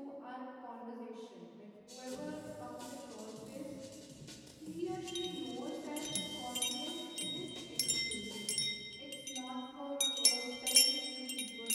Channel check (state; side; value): identical; both; correlation 1.00